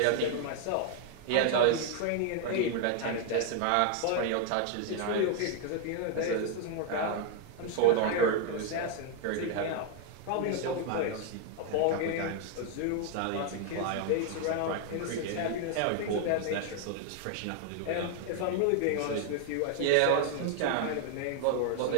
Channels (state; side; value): different; both; correlation 0.00